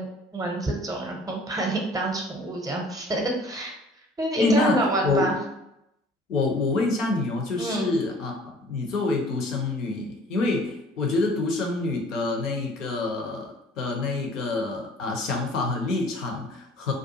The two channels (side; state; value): both; normal; correlation 0.51